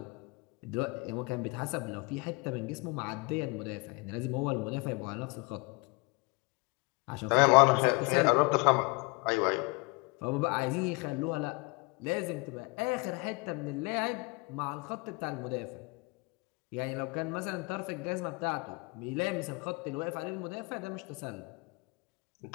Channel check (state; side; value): quieter; right; 28.1 dB